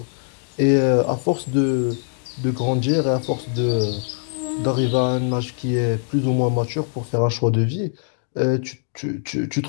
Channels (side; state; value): right; silent; digital silence